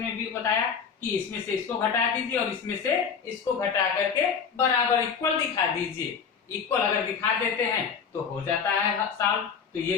में भी बताया कि इसमें से इसको घटा दीजिए और इसमें से इसको घटा करके बराबर इक्वल दिखा दीजिए। इक्वल अगर दिखा देते हैं तो हो जाता है सॉल्व। तो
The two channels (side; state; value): right; quieter; 6.5 dB